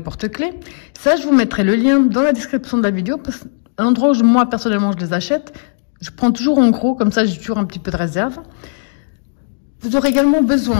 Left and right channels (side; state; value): right; silent; digital silence